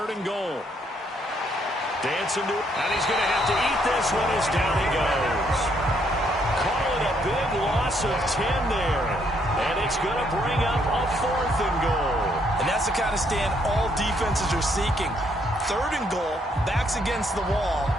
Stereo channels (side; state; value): both; normal; correlation 0.71